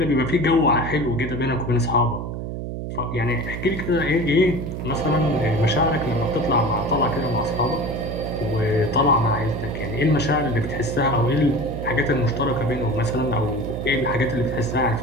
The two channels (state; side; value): noise; right; hum, 6 dB below the sound